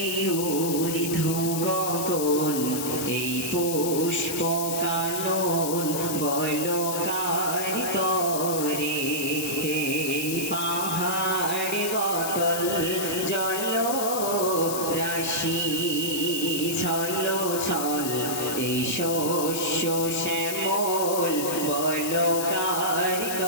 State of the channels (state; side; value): noise; left; hiss, 4 dB below the sound